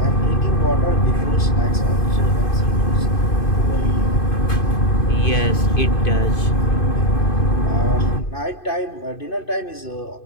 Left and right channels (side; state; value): right; late; 2.5 ms